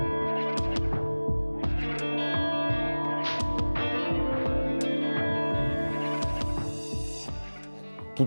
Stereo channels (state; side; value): inverted; both; correlation -1.00